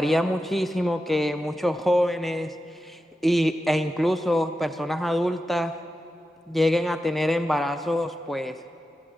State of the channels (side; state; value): both; normal; correlation 0.91